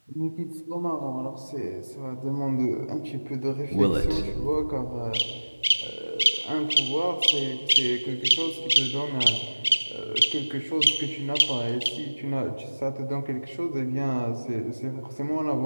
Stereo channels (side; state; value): both; inverted; correlation -1.00